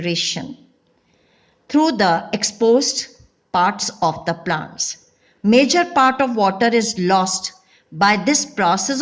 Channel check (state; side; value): identical; both; correlation 1.00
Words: through the exposed parts of the plants. Major part of water is lost by this process